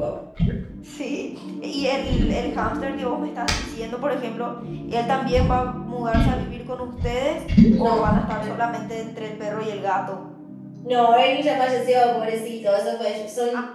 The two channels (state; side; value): identical; both; correlation 1.00